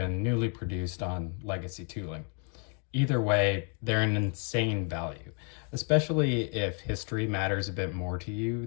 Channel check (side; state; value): right; quieter; 39.2 dB